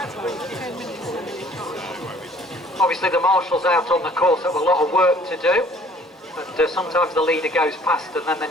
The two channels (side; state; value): both; normal; correlation 0.56